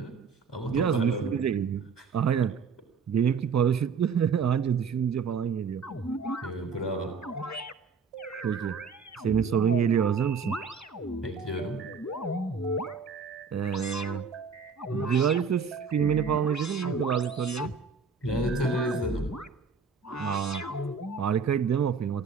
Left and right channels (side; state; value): left; quieter; 5.6 dB